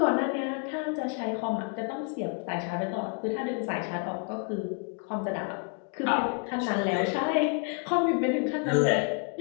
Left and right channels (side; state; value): right; quieter; 37.3 dB